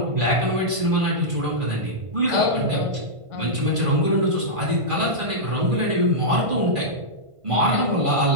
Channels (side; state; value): left; late; 1.5 ms